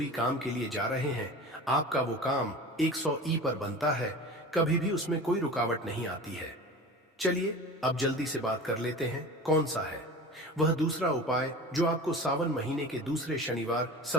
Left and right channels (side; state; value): both; normal; correlation 0.35